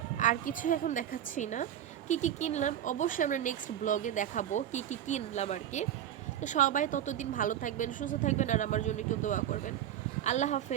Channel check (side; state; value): left; quieter; 10.9 dB